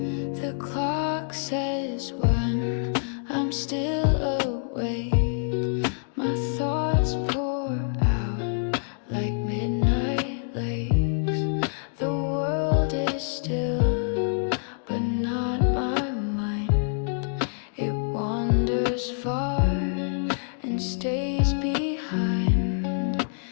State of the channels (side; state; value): right; silent; digital silence